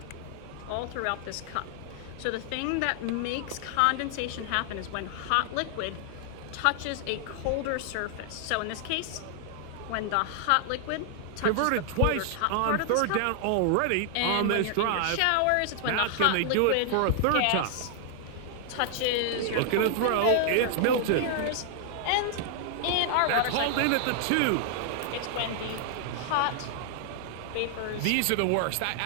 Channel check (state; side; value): different; both; correlation 0.00